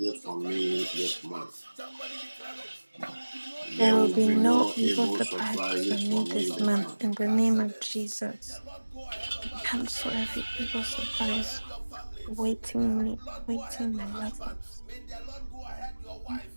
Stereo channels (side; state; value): both; inverted; correlation -1.00